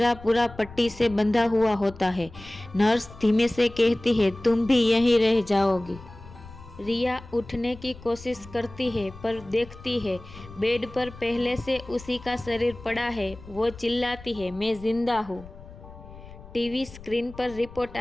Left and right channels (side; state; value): left; noise; rumble, 18 dB below the sound